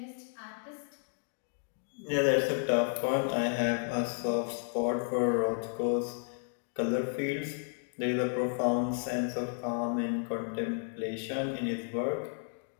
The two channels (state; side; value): silent; right; 56 dB below the other